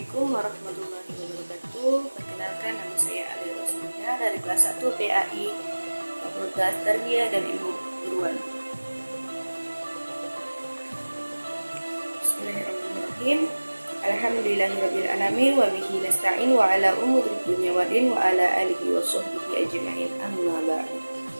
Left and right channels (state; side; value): inverted; both; correlation -1.00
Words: warahmatullahi wabarakatuh. Perkenalkan, nama saya Ali Rosmina dari kelas 1 PAI Fakultas Tarbiyah dan Ilmu Keguruan. Bismillahirrahmanirrahim. Alhamdulillahirabbil alamin wa bihi nasta'in wa ala umuri dunya waddin wa ala alihi wa sahbihi ajma'in. Amma ba'du.